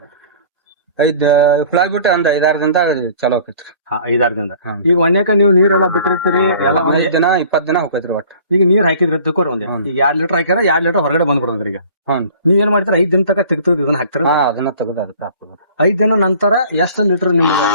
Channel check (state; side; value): inverted; both; correlation -0.49